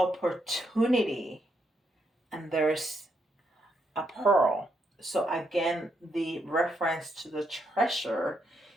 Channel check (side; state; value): both; normal; correlation 0.78